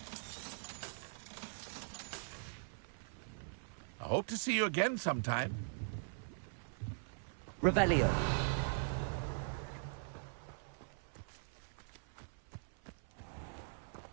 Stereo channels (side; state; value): left; silent; 50 dB below the other